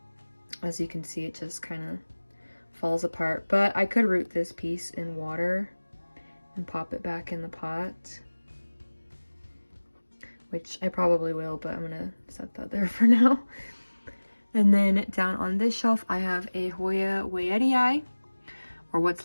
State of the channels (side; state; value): both; inverted; correlation -1.00